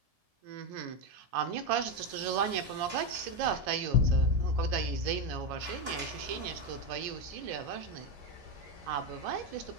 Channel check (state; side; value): late; left; 1.7 ms